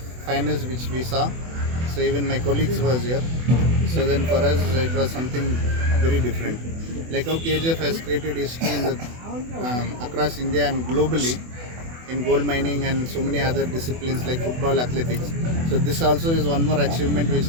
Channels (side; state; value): left; late; 24 ms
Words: finals which we saw, so even my colleagues was here. So then for us it was something very different. Like how KGF has created history in the, across India and globally in gold mining and so many other disciplines like football, athletics. So this also is one more achievement which